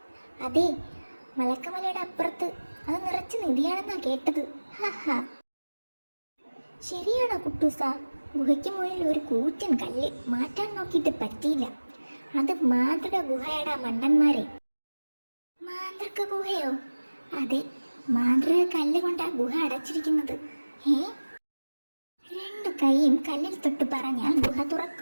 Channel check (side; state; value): both; inverted; correlation -1.00